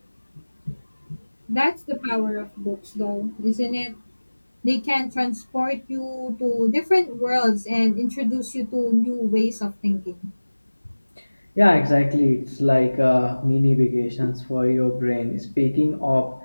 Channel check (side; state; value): both; inverted; correlation -1.00